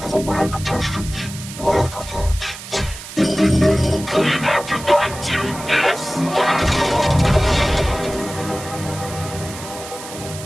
overwhelmed contestants. Afterthoughts. Clean afterthought to this.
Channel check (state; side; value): noise; right; hiss, 13 dB below the sound